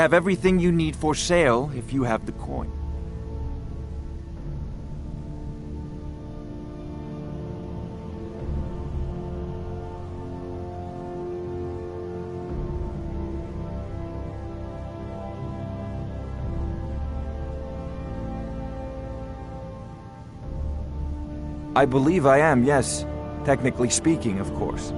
everything you need for sale if you have the coin. I believe I am, yes. Technically speaking, of course.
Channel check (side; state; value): both; identical; correlation 1.00